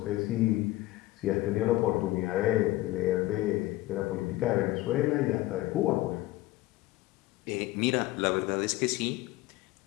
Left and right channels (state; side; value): quieter; right; 17.6 dB